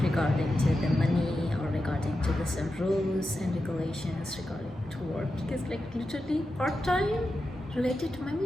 regarding to the money or regarding to the some rules and regulations regarding to work, because like literally part-time related to my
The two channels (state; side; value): normal; both; correlation 0.90